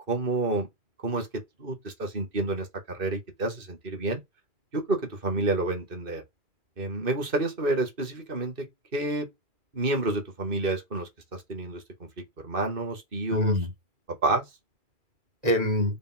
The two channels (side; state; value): left; late; 2.6 ms